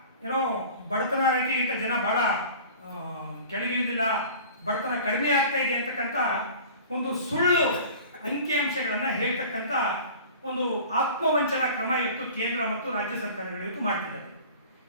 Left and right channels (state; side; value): inverted; both; correlation -0.42